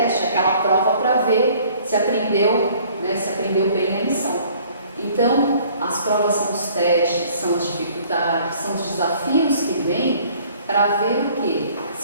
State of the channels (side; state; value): both; inverted; correlation -0.56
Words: aquela prova para ver se aprendeu, se aprendeu bem a lição. Então, as provas são os testes, são as dificuldades, são os desafios que vêm para ver o quê?